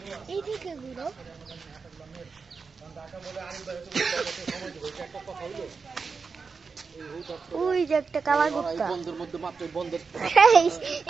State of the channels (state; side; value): quieter; left; 5.0 dB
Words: এইদিকে ঘুরো। ওই যে একটা কালা কুত্তা।